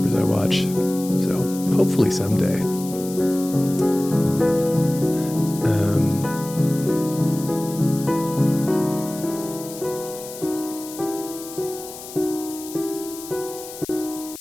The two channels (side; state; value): left; noise; hiss, 13 dB below the sound